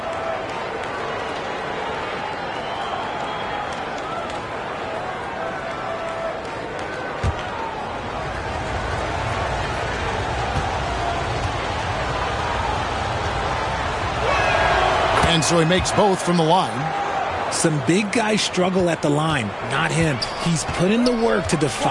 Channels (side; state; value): both; identical; correlation 1.00